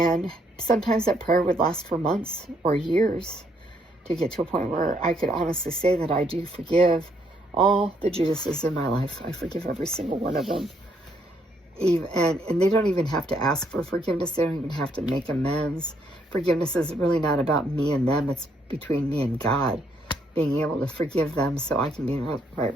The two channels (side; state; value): both; normal; correlation 0.71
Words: sometimes that prayer would last for months or years to get to a point where I could honestly say that I do forgive all the Judases in my life. I forgive every single one of them. And they don't even have to ask for forgiveness. They don't even have to make amends. Forgiveness is really not about me and them. It's between me and God, being able to forgive them so I can be in a right